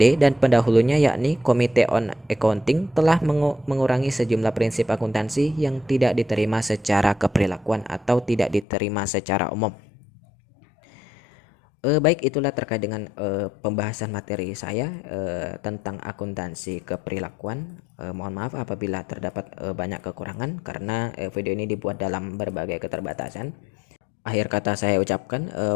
dan pendahulunya yakni Komite on Accounting telah mengurangi sejumlah prinsip akuntansi yang tidak diterima secara keperilakuan atau tidak diterima secara umum. Baik, itulah terkait dengan pembahasan materi saya tentang akuntansi keperilakuan. Mohon maaf apabila terdapat banyak kekurangan karena video ini dibuat dalam berbagai keterbatasan. Akhir kata saya ucapkan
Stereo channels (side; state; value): right; drops out; at 8.7 s